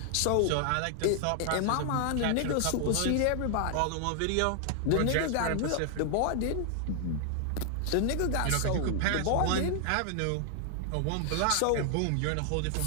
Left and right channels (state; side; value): different; both; correlation 0.00